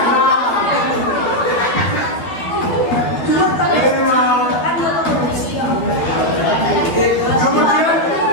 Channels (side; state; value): right; late; 12 ms